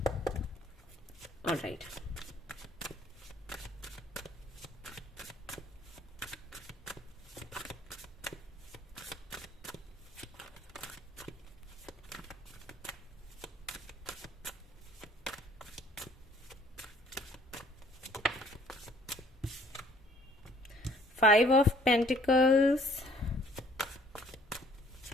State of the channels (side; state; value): both; normal; correlation 0.58